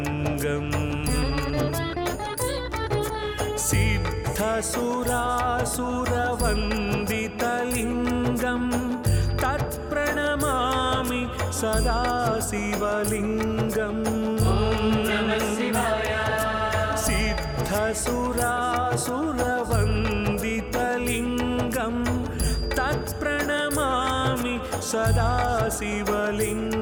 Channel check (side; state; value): both; identical; correlation 1.00